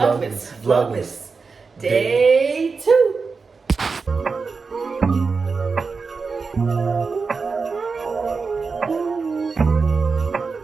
Vlogmas. Day 2.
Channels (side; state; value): left; quieter; 4.7 dB